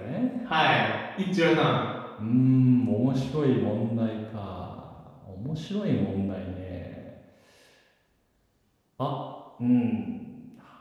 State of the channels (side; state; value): both; identical; correlation 1.00